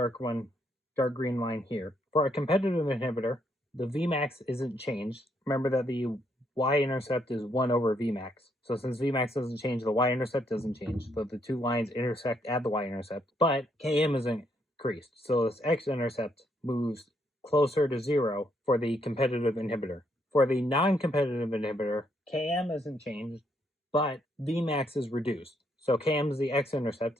green line here. For a competitive inhibitor, the Vmax isn't changed. Remember that the y-intercept is 1 over Vmax. So since Vmax doesn't change, the y-intercept doesn't change. So the two lines intersect at the y-intercept. But Km is increased. So this x-intercept moves closer to 0 for the competitive inhibitor. For the non-competitive inhibitor, Km isn't changed, but Vmax is reduced. So Km is the x-intercept,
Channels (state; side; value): normal; both; correlation 0.74